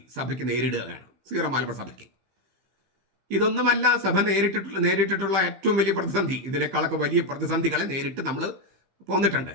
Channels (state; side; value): late; left; 15 ms